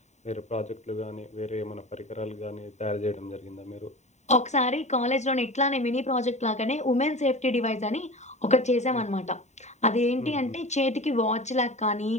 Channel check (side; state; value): right; late; 0.33 ms